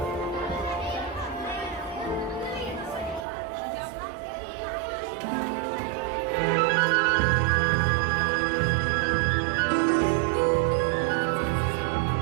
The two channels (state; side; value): drops out; left; at 3.2 s